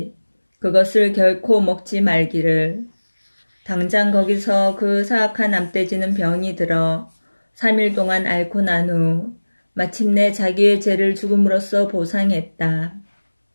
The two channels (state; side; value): inverted; both; correlation -1.00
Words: 그것을 결코 먹지 말기를. 당장 거기서 그 사악한 암돼지는 병이 들어 3일 동안 앓고 난 후 마침내 자기의 죄를 죽음으로써 보상했다.